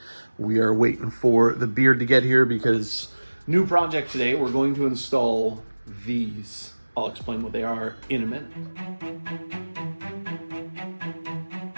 We are waiting for the beard to get here because new project today. We're going to install these. I'll explain what they are in a minute.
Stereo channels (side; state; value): both; inverted; correlation -1.00